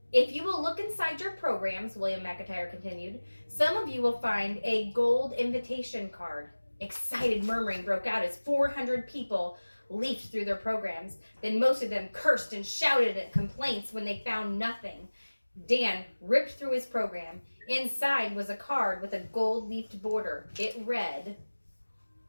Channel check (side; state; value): both; inverted; correlation -1.00